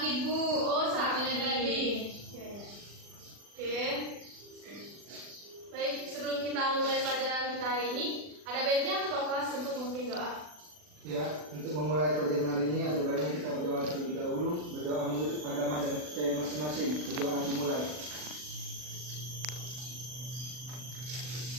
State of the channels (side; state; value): left; late; 40 ms